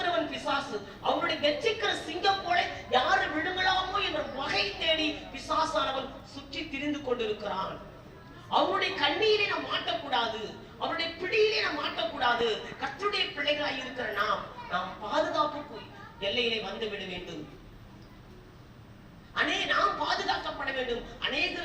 பிசாசு. அவனுடைய கெச்சிக்கிற சிங்கம் போல யாரு விழுங்கலாமோ என்ற வகை தேடி பிசாசானவன் சுற்றி திரிந்து கொண்டிருக்கிறான். அவனுடைய கண்ணீரை நாம் மாட்டக்கூடாது, அவருடைய பிடியிலே நாம் மாட்டக்கூடாது. கர்த்தருடைய பிள்ளைகளாய் இருக்கிற நாம் பாதுகாப்புக்கு எல்லையிலே வந்து விட வேண்டும். நாம் பாதுகாக்கப்பட வேண்டும்.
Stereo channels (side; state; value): both; identical; correlation 1.00